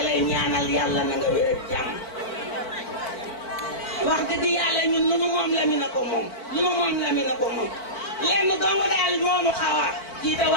lay ñaanal yàlla na nga wér ak jàmm wax dëgg yàlla ñun lu nu moom Lamine ko moom lu nu moom Lamine ko moom lenn dong daal moomu xaw a kii te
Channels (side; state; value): right; late; 4.5 ms